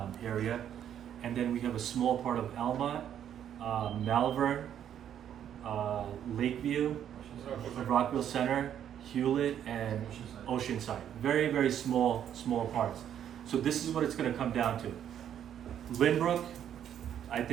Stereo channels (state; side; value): quieter; left; 9.8 dB